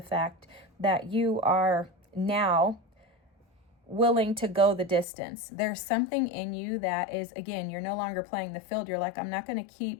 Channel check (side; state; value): right; drops out; at 5.1 s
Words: fact that you are now willing to go the distance. There's something in you that is, again, you're no longer playing the field. You're like, I'm not going to